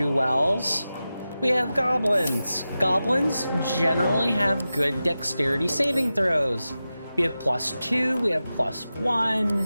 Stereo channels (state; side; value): inverted; both; correlation -0.93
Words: we have goblins. Goblins generally have good dexterity saving throws. We have +2, we have +1.